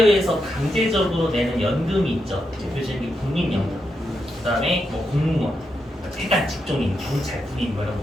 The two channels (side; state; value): both; normal; correlation 0.84